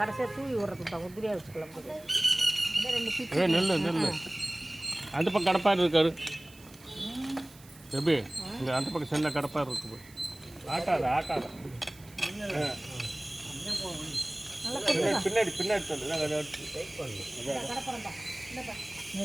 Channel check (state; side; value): noise; right; hiss, 23 dB below the sound